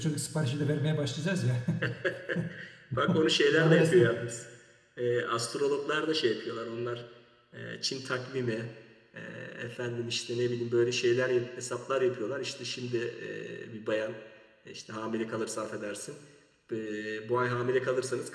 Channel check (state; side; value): identical; both; correlation 1.00